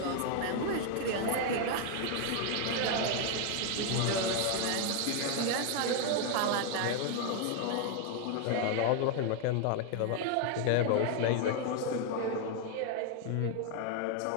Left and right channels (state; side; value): different; both; correlation 0.01